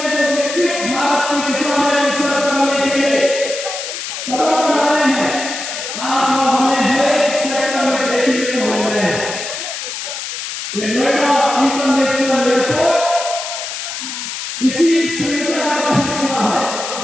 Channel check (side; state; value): left; noise; hiss, 6 dB below the sound